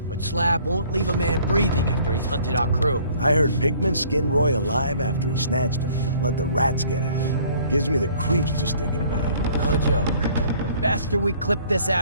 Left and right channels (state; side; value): inverted; both; correlation -0.56